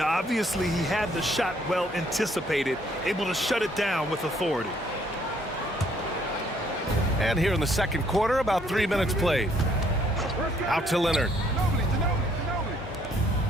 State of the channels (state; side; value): normal; both; correlation 0.65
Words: obviously he had the shot well anticipated, able to shut it down with authority. And here in the second quarter, about 3 minutes played. Out to Leonard.